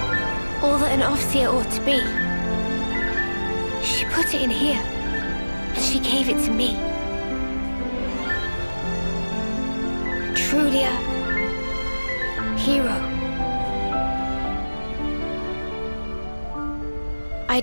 All that an Offseer ought to be. She put it in here, and she gave it to me. Truly a hero. I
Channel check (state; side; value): inverted; both; correlation -1.00